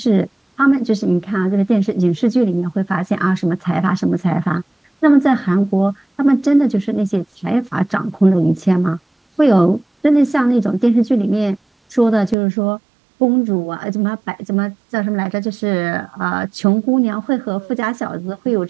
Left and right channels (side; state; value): left; drops out; at 12.4 s